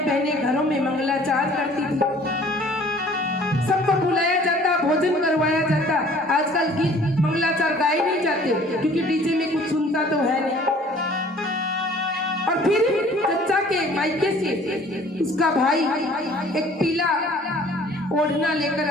बहनें घरों में मंगलाचार करती थी, सबको बुलाया जाता, भोजन करवाया जाता। आजकल गीत मंगलाचार गाए नहीं जाते क्योंकि डीजे में कुछ सुनता तो है नहीं। और फिर चच्चा के मायके से उसका भाई एक पीला ओढ़ना लेकर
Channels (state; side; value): normal; both; correlation 0.53